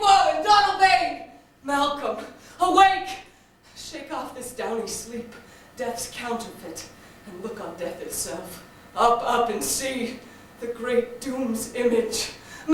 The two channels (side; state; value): both; identical; correlation 1.00